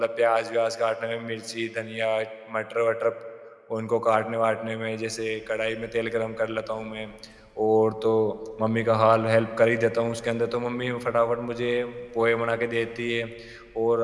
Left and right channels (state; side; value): identical; both; correlation 1.00